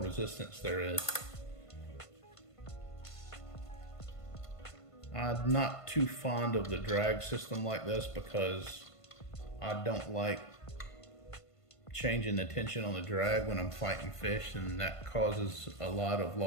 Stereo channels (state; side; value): late; right; 1.5 ms